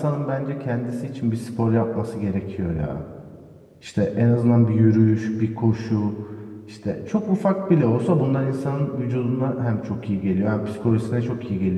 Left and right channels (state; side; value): identical; both; correlation 1.00